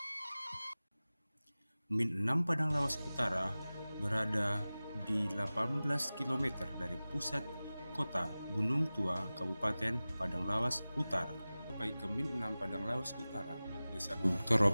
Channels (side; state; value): both; inverted; correlation -0.97